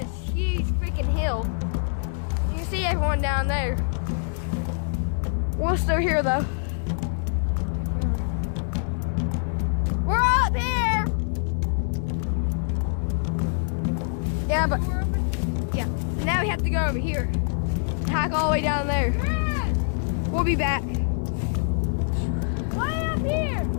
huge freaking hill. You can see everyone down there. We're still here though. We're up here! Yeah, but yeah. Now we have to go over here. Hike all the way down there. We'll be back. Why up here?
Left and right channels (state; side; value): silent; right; digital silence